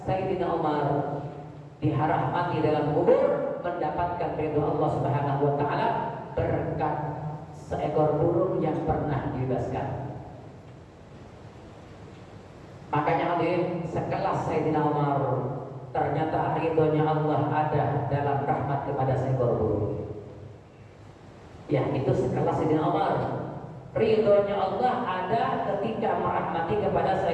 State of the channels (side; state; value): both; identical; correlation 1.00